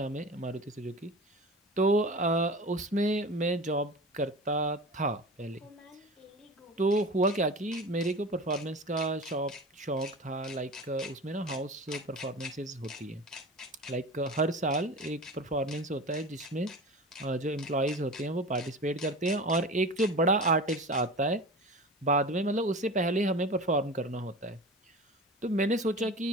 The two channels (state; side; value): normal; both; correlation 0.33